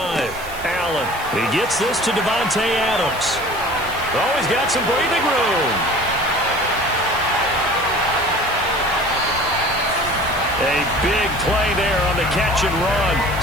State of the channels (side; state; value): right; noise; hiss, 16 dB below the sound